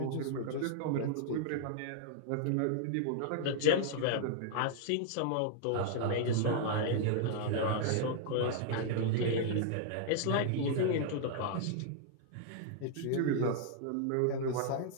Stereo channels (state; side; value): different; both; correlation -0.01